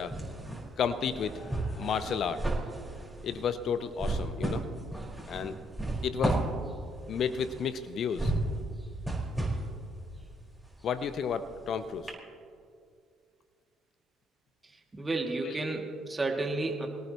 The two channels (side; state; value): both; normal; correlation 0.73